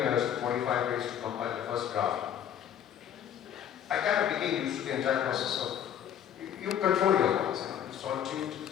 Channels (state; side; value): quieter; right; 9.7 dB